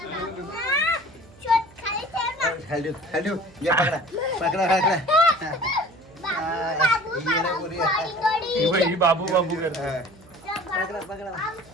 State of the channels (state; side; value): noise; right; hum, 24 dB below the sound